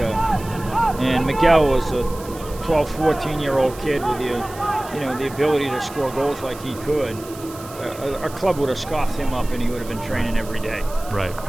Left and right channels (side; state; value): right; noise; hiss, 18 dB below the sound